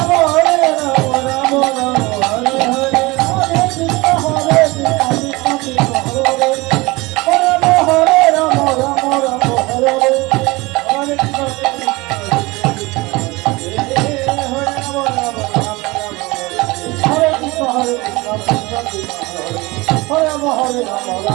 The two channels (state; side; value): quieter; left; 23.0 dB